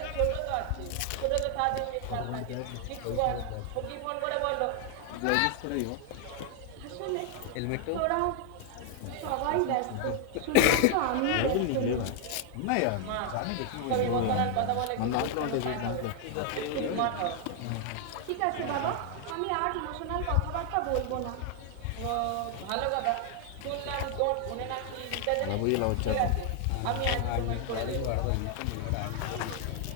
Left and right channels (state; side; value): different; both; correlation 0.00